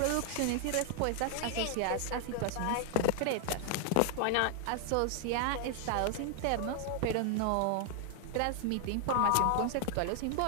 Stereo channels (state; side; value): different; both; correlation 0.00